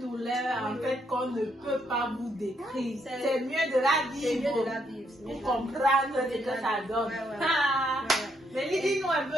douleur en fait qu'on ne peut pas vous décrire. C'est mieux de la vivre. C'est mieux de la vivre. Pour comprendre ce que ça donne. Mais dis-nous un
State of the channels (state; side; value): normal; both; correlation 0.75